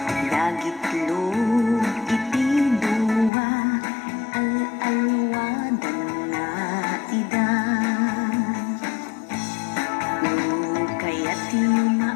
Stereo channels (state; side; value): drops out; right; at 3.3 s